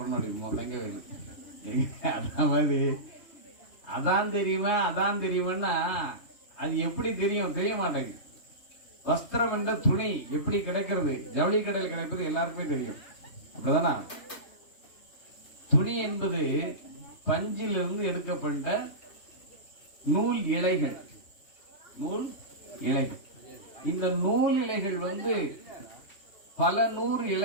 அப்படின்பா தங்கவேலு. அதான் மாதிரி அதான் தெரியுமா அதான் தெரியுமான்னா அது எப்படி தெரியும்? தெரிய மாட்டேங்குது. வஸ்திரம் என்ற துணி எப்படி கிடைக்கிறது? ஜவுளி கடையில் கிடைப்பது எல்லாருக்குமே தெரியும், அப்படிதானா? துணி என்பது பஞ்சிலிருந்து எடுக்கப்பட்ட நூல் இலைகள். நூல் இலைகள். இந்த நூல் இலைகள் பல 100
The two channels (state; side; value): late; right; 3.2 ms